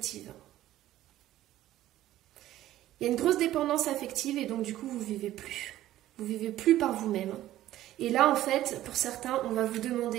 Il y a une grosse dépendance affective et donc du coup vous ne vivez plus. Vous ne vivez plus par vous-même. Et là en fait, pour certains, on va vous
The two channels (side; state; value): left; quieter; 14.0 dB